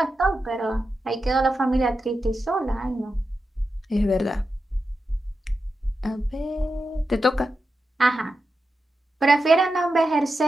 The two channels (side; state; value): both; normal; correlation 0.89